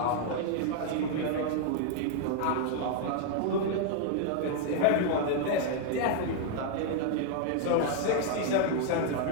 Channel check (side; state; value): both; different; correlation 0.00